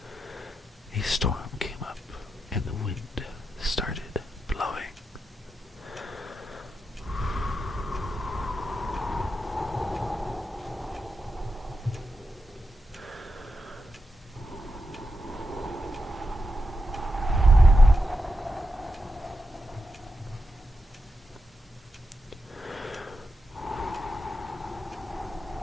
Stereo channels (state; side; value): normal; both; correlation 0.87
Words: a storm came up and the wind started blowing.